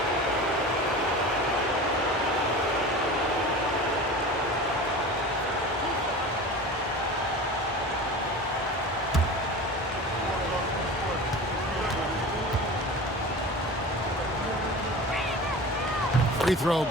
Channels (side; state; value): both; normal; correlation 0.34